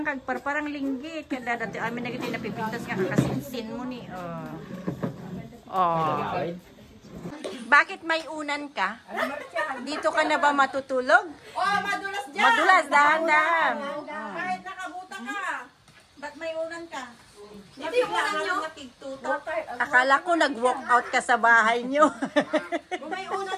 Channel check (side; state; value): both; identical; correlation 1.00